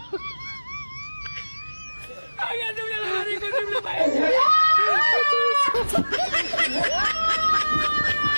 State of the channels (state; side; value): inverted; both; correlation -1.00